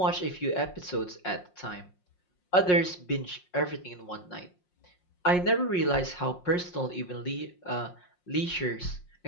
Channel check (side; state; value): right; late; 5.5 ms